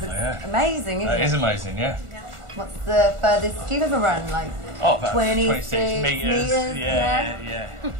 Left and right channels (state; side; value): late; left; 1.4 ms